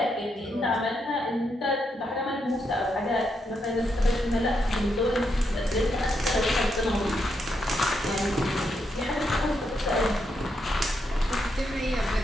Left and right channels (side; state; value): both; normal; correlation 0.81